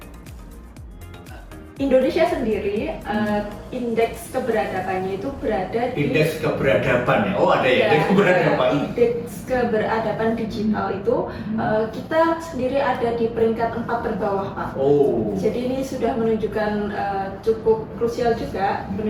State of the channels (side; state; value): both; identical; correlation 1.00